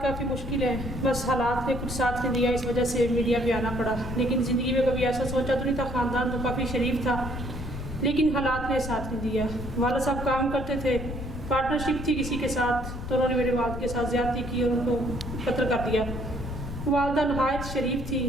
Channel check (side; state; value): left; noise; rumble, 7 dB below the sound